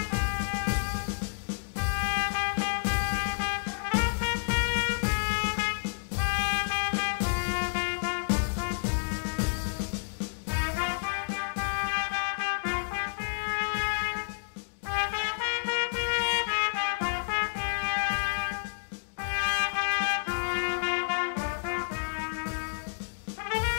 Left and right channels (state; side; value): silent; right; digital silence